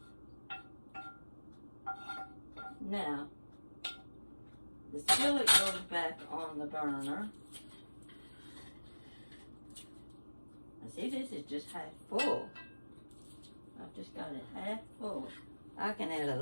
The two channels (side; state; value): both; inverted; correlation -1.00